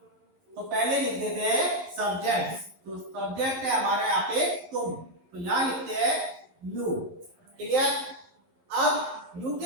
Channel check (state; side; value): late; left; 11 ms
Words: तो पहले लिख देते हैं सब्जेक्ट। तो सब्जेक्ट है हमारा यहाँ पे तुम, तो यहाँ लिखते हैं यू, क्लियर। अब यू